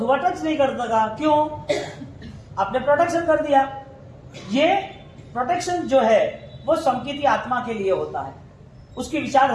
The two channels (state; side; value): identical; both; correlation 1.00